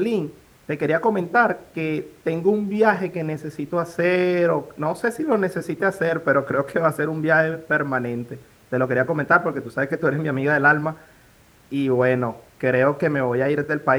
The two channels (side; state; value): both; identical; correlation 1.00